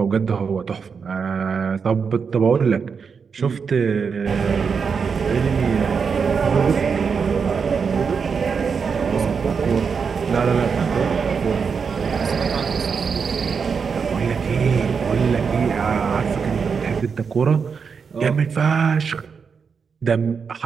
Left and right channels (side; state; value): left; quieter; 5.9 dB